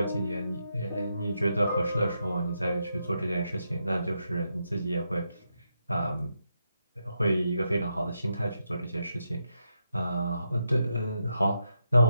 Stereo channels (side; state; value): both; inverted; correlation -0.83